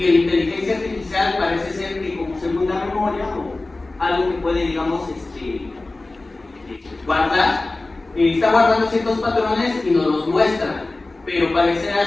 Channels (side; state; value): right; quieter; 3.1 dB